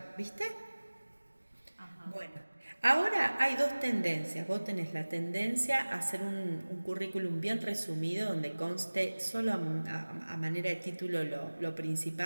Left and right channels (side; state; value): both; inverted; correlation -1.00